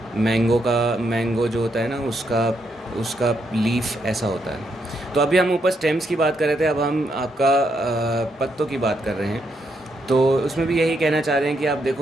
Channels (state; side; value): normal; both; correlation 0.78